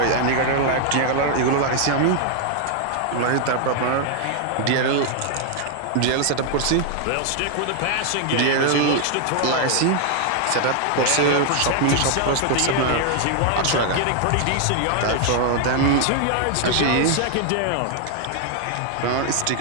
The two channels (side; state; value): both; different; correlation 0.00